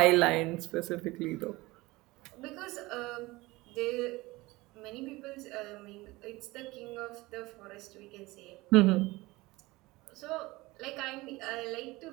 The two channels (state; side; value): quieter; left; 21.0 dB